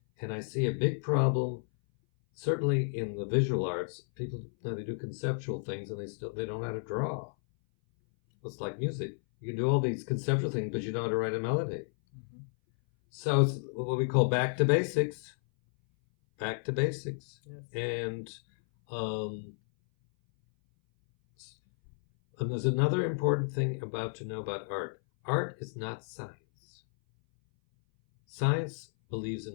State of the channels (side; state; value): right; silent; 56 dB below the other